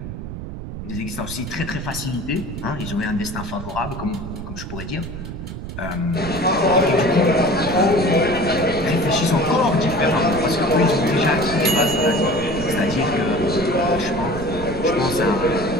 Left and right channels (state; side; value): noise; right; rumble, 8 dB below the sound